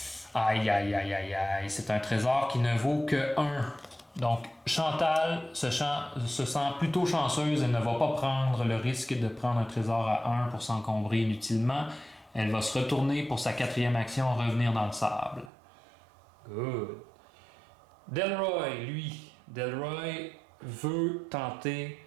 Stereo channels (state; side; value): drops out; left; at 15.5 s